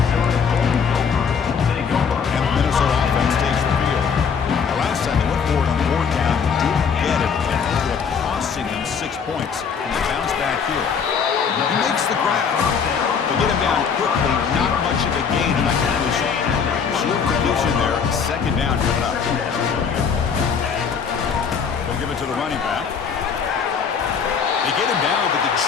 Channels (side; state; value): right; quieter; 6.4 dB